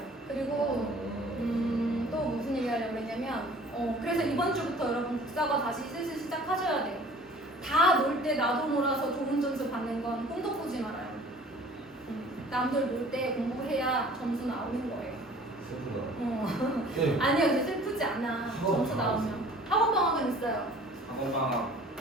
그리고 또 무슨 얘기 하려고 했냐면 그래서 이번 주부터 여러분 국사가 다시 슬슬 시작하셔야 돼요. 다 놀 때 나도 놀아서 좋은 점수 받는 건 꿈도 꾸지 말아요. 남들 놀 때 공부해야 점수 나오는 거예요. 슬프다. 네. 아니요, 근데 슬프지 않아. 점수 나오면. 학원 방학은 있어요. 학원 방학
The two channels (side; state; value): both; normal; correlation 0.49